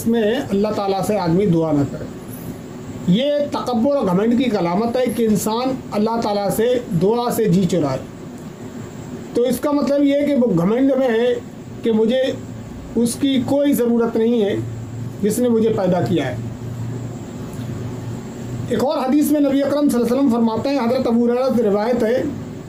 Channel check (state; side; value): identical; both; correlation 1.00